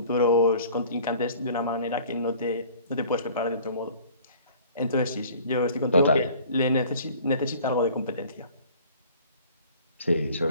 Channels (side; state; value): both; inverted; correlation -0.49